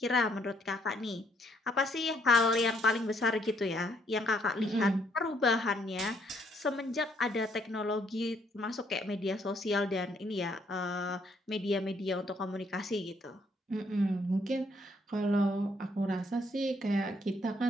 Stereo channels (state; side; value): normal; both; correlation 0.69